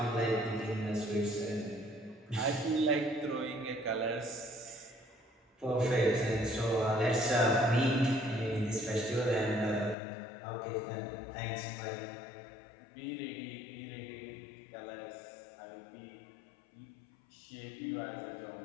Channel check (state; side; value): drops out; right; at 10.0 s